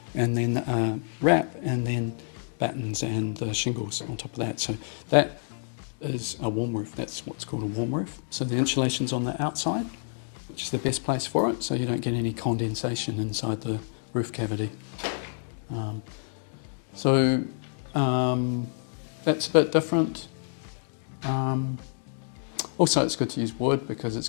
and then wrap, and then battens and the shingles on top of that. So that is a warm roof. That's what's called a warm roof. So the insulation's on the outside, which is the best place for it, so you don't get any condensation inside the roof cavity. That's a bit different. Also, it's good to use wood because it's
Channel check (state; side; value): silent; right; digital silence